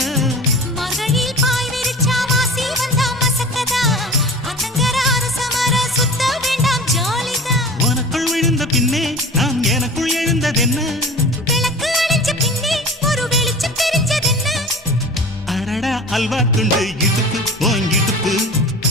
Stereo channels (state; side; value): normal; both; correlation 0.37